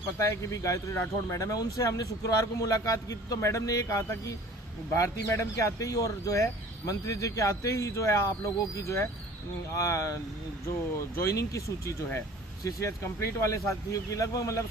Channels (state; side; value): normal; both; correlation 0.47